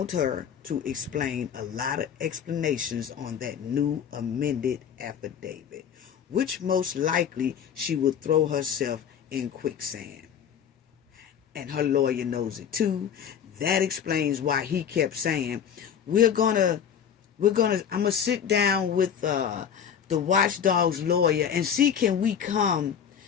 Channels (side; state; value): right; quieter; 8.2 dB